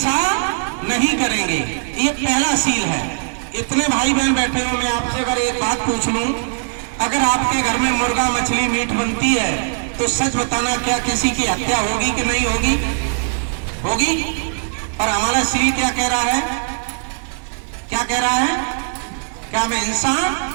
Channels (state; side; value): silent; left; 66 dB below the other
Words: नहीं करेंगे। ये पहला सील है। इतने भाई बहन बैठे हो, मैं आपसे अगर एक बात पूछ लूं, अगर आपके घर में मुर्गा मछली मीट बनती है तो सच बताना, क्या किसी की हत्या होगी कि नहीं होगी? होगी। और हमारा सील क्या कह रहा है? क्या कह रहा है? क्या हम हिंसा